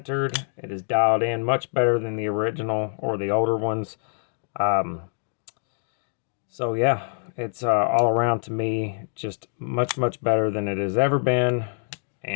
It is dialed in much better than the original or the older ones. So yeah, it's all around to me just much better than it has ever been,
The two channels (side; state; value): right; silent; digital silence